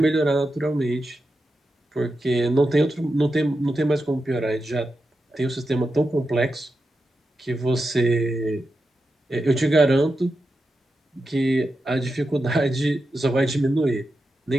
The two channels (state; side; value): normal; both; correlation 0.89